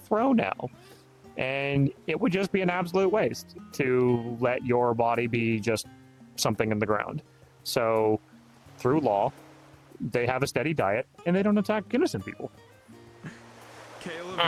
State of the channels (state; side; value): identical; both; correlation 1.00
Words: row now. And it would just be an absolute waste to let your body be just something in the ground. So, through law, they have a steady diet, and they don't attack innocent people. Caleb